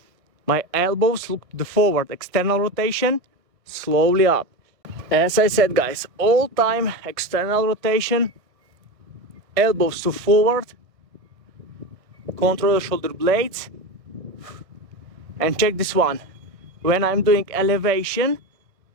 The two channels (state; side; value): late; left; 1.5 ms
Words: my elbows look to the forward. External rotation, slowly up. As I said, guys, all time external rotation, elbows to forward, control the shoulder blades, and check this one. When I'm doing elevation,